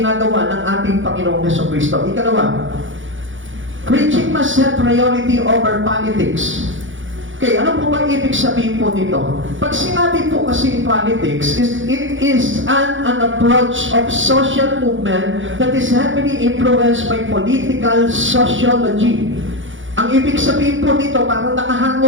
ng ating Panginoong Jesucristo. Ikalawa, preaching must have priority over politics. Okay, ano po ba ibig sabihin po nito? Pag sinabi po kasi politics, it is an approach of social movement that is heavily influenced by political sociology. Ang ibig sabihin po nito, parang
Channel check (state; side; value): late; left; 0.56 ms